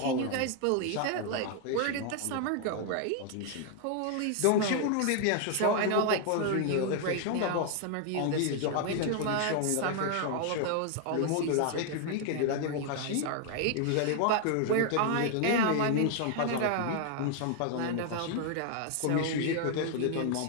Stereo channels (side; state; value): both; different; correlation 0.00